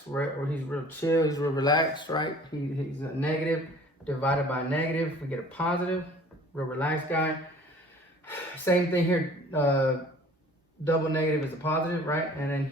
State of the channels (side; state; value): both; normal; correlation 0.50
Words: right? Or he's real chill, he's real relaxed, right? He's a negative divided by a negative. We get a positive, real relaxed guy. Same thing here, double negative is a positive, right? And then